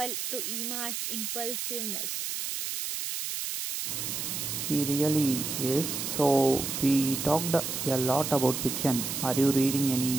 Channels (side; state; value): right; noise; hiss, 3 dB below the sound